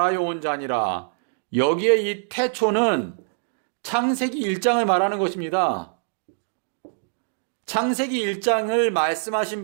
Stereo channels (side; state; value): left; silent; digital silence